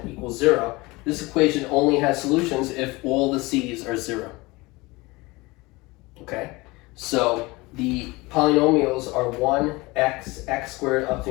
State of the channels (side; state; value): right; quieter; 22.9 dB